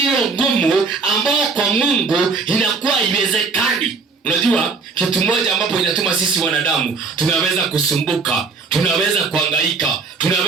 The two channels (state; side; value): quieter; left; 4.6 dB